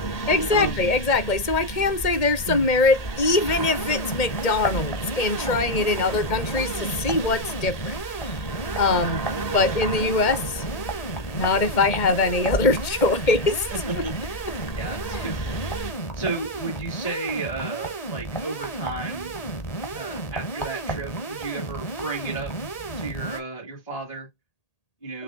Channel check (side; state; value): right; late; 1.8 ms